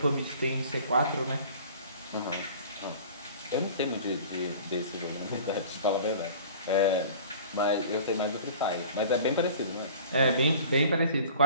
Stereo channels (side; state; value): both; inverted; correlation -0.45